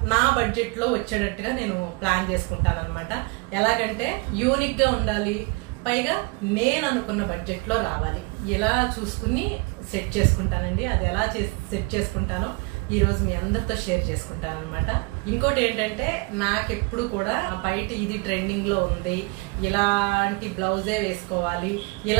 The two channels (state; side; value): quieter; left; 28.2 dB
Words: నా బడ్జెట్ లో వచ్చేటట్టుగా నేను ప్లాన్ చేసుకుంటాను అనమాట. ఎలాగంటే యూనిక్ గా ఉండాలి, పైగా నేను అనుకున్న బడ్జెట్ లో రావాలి, ఇలా చూసుకుని సెట్ చేసుకుంటానండి. అది ఎలా సెట్ చేసుకుంటానో ఈ రోజు మీ అందరితో షేర్ చేసుకుంటాను అనమాట. ఇంకోటి ఏంటంటే నాకెప్పుడు కూడా బయట ఇది ట్రెండింగ్ లో ఉంది, ఇలాంటి బ్లౌజే వేసుకోవాలి,